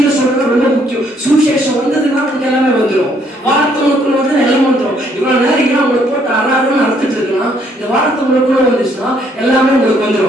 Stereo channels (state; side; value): normal; both; correlation 0.67